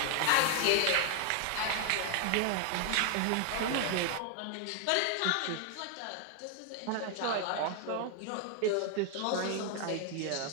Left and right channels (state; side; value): different; both; correlation 0.00